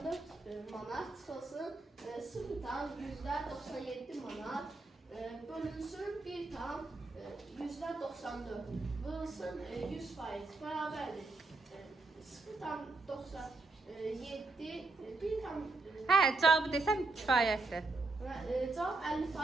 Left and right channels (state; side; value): quieter; left; 3.4 dB